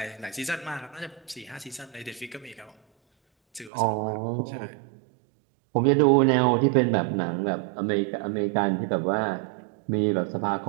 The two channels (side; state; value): left; drops out; at 3.7 s